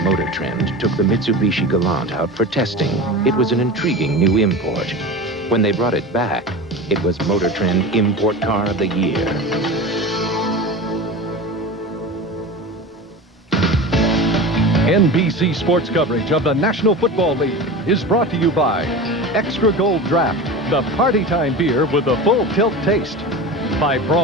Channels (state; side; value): normal; both; correlation 0.30